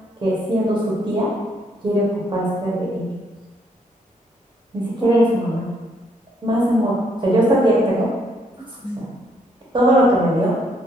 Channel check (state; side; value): normal; both; correlation 0.70